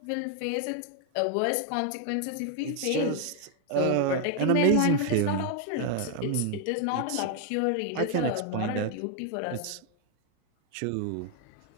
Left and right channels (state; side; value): different; both; correlation 0.00